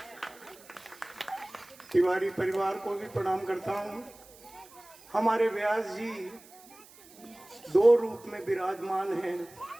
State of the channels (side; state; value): right; noise; hiss, 23 dB below the sound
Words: तिवारी परिवार को भी प्रणाम करता हूँ। हमारे व्यास जी 2 रूप में विराजमान हैं,